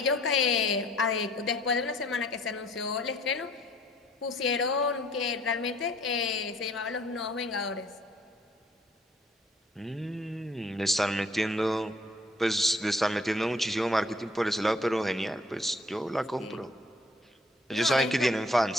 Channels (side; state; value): both; normal; correlation 0.59